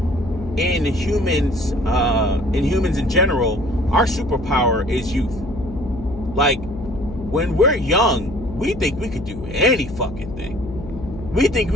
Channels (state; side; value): noise; left; hum, 11 dB below the sound